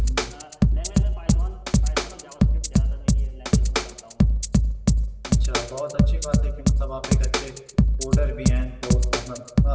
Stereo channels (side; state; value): both; identical; correlation 1.00